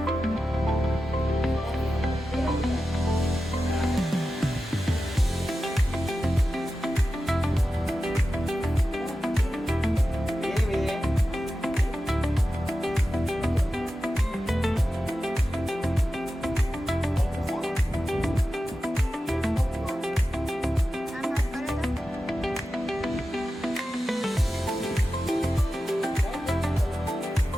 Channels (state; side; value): normal; both; correlation 0.92